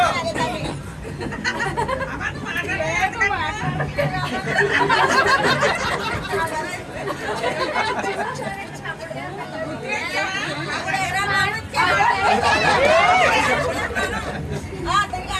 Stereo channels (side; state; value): both; identical; correlation 1.00